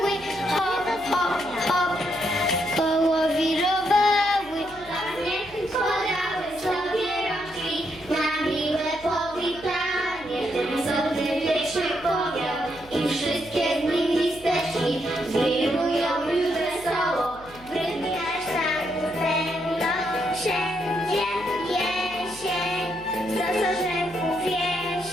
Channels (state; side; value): noise; left; hum, 21 dB below the sound